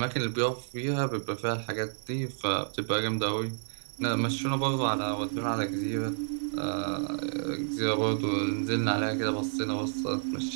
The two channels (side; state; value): left; silent; 58 dB below the other